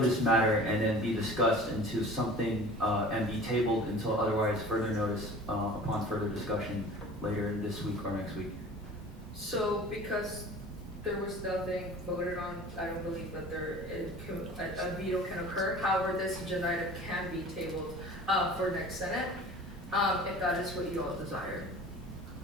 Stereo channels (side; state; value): both; normal; correlation 0.42